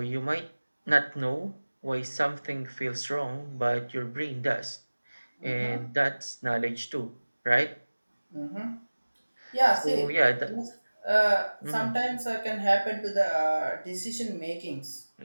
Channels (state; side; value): inverted; both; correlation -1.00